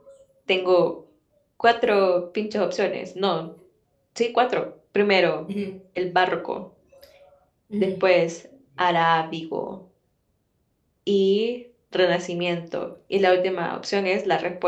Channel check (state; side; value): identical; both; correlation 1.00